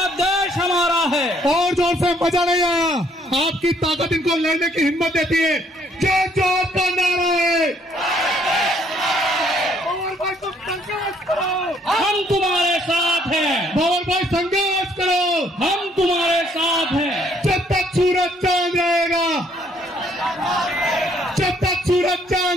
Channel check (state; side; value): normal; both; correlation 0.65